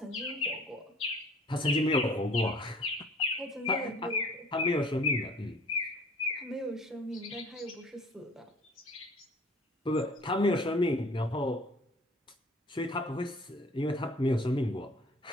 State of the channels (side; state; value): both; normal; correlation 0.52